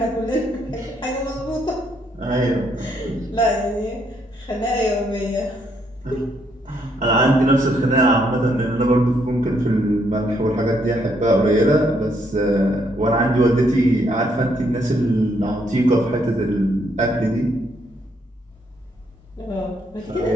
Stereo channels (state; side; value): normal; both; correlation 0.72